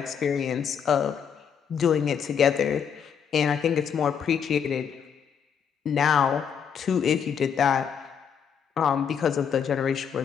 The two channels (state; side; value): quieter; right; 7.5 dB